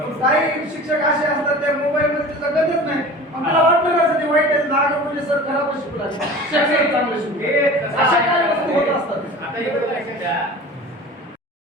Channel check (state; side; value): normal; both; correlation 0.38